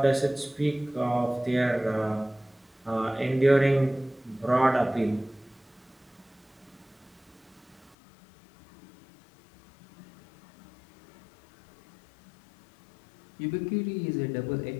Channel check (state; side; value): drops out; right; at 8.0 s